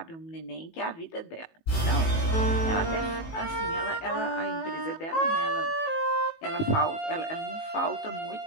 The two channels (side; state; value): right; late; 18 ms